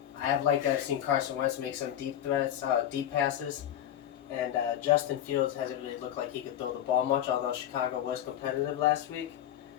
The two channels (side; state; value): right; quieter; 11.1 dB